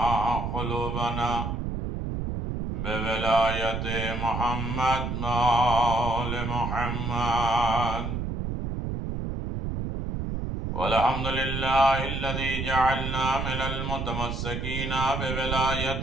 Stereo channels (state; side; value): noise; right; rumble, 3 dB below the sound